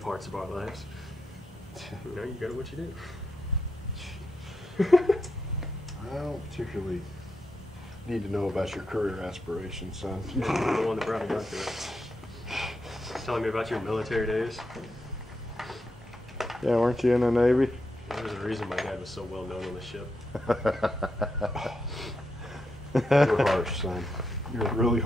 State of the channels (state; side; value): normal; both; correlation 0.84